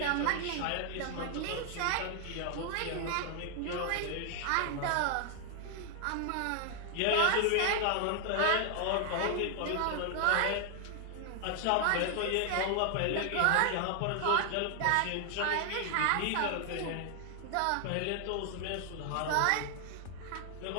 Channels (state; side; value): different; both; correlation 0.00